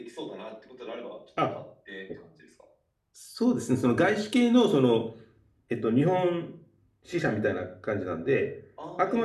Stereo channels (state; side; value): identical; both; correlation 1.00